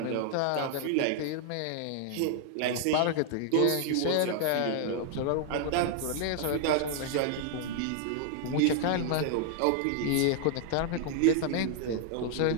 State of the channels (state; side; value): different; both; correlation 0.00